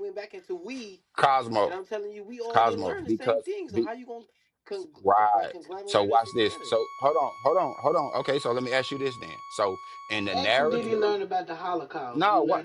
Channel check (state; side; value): identical; both; correlation 1.00